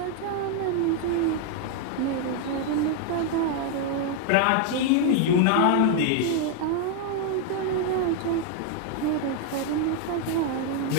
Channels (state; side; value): different; both; correlation 0.00